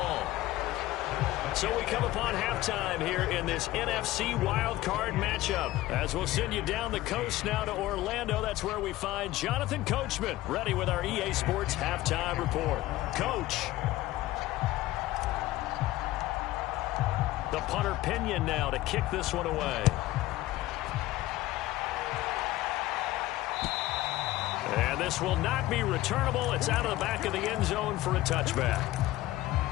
So we come upon halftime here in this NFC wildcard matchup. As we'll send you down the coast now to Orlando. That's where we find Jonathan Coachman ready with our EA Sports halftime report. Coach. The punter Pinion now to kick this one away. And this will not be returnable. It's out of the back of the end zone for a touchback.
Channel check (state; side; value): quieter; right; 16.5 dB